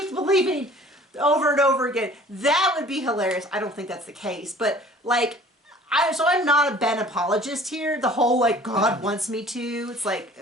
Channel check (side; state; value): both; normal; correlation 0.49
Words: believing over and over again. That would be hilarious. I don't think that's the case. But, like, I'm not a Ben apologist here. The whole, like, God wants me to. It's like,